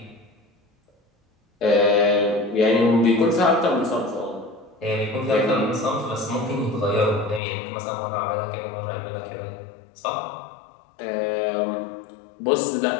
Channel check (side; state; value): right; drops out; at 7.4 s